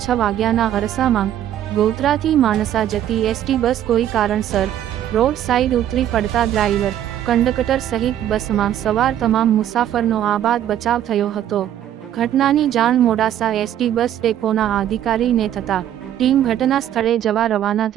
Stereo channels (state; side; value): quieter; left; 11.2 dB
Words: 6 વાગ્યાના અરસામાં ગોધરાથી માણસા જતી એસટી બસ કોઈ કારણસર રોડ સાઈડ ઉતરી પડતા ડ્રાઈવર, કંડક્ટર સહિત બસમાં સવાર તમામ મુસાફરનો આબાદ બચાવ થયો હતો। ઘટનાની જાણ મોડાસા એસટી બસ ડેપોના અધિકારીને થતાં ટીમ ઘટના સ્થળે જવા રવાના